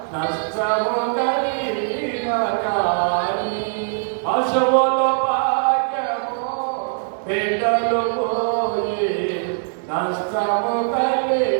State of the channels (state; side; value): silent; left; digital silence